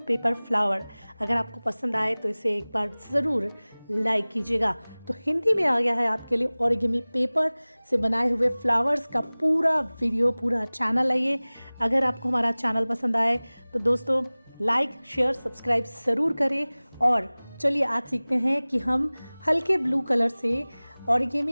पेपर फ्लावर। अगर आपको पसंद आए तो इसे एक बार ज़रूर लाइक कीजिएगा। तो हिंदी में आ गया है आपके लिए ओरिगेमी पेपर से बनाए हुए फ्लावर्स का पूरा वीडियो, पूरा चैनल है ये। अगर आपको हमारा चैनल पसंद आए तो दोस्तों लाइक शेयर सब्सक्राइब ज़रूर करें। और चलिए आज सीखते हैं कि हम हल्के ब्लू कलर से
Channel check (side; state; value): both; inverted; correlation -1.00